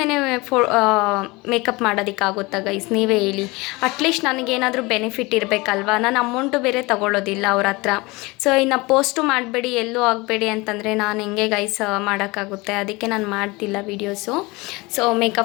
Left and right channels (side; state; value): right; quieter; 23.7 dB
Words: ಮೇಕಪ್ ಮಾಡೋದಕ್ಕಾಗುತ್ತಾ ಗೈಸ್, ನೀವೇ ಹೇಳಿ. ಅಟ್ಲೀಸ್ಟ್ ನನಗೇನಾದರೂ ಬೆನಿಫಿಟ್ ಇರಬೇಕಲ್ವಾ, ನಾನು ಅಮೌಂಟು ಬೇರೆ ತೊಗೊಳ್ಳೋದಿಲ್ಲ ಅವ್ರ ಹತ್ರ. ಸೊ ಇನ್ನು ಪೋಸ್ಟು ಮಾಡಬೇಡಿ, ಎಲ್ಲೂ ಆಗಬೇಡಿ ಅಂತಂದರೆ ನಾನು ಹೆಂಗೆ ಗೈಸ್ ಮಾಡೋಕ್ಕಾಗುತ್ತೆ? ಅದಕ್ಕೆ ನಾನು ಮಾಡ್ತಿಲ್ಲ videos, so